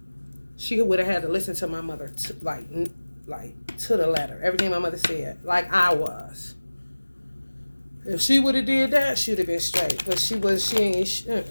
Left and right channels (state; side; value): inverted; both; correlation -1.00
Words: She would have had to listen to my mother like to the letter. Everything my mother said, like I was. If she would have did that, she would have been straight. But she ain't.